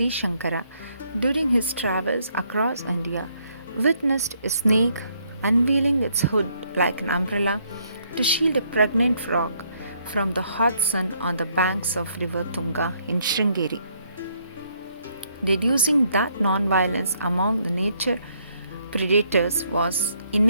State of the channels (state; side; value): inverted; both; correlation -0.70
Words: Shankara, during his travels across India, witnessed a snake unveiling its hood like an umbrella to shield a pregnant frog from the hot sun on the banks of river Tunga in Sringeri. Deducing that non-violence among the nature predators was